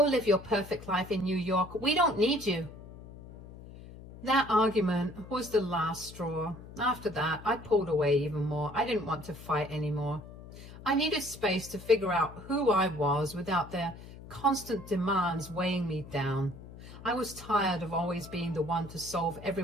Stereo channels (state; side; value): noise; left; hum, 16 dB below the sound